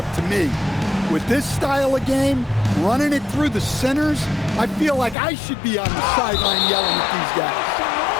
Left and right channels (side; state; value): right; drops out; at 5.2 s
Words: to me. With this style of game, running it through the centers, I feel like I should be on the sideline yelling at these guys.